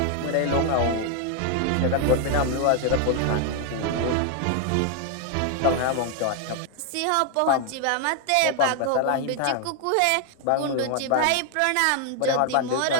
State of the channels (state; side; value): different; both; correlation 0.00